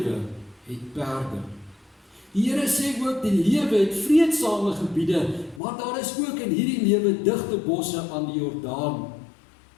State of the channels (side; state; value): right; drops out; at 5.6 s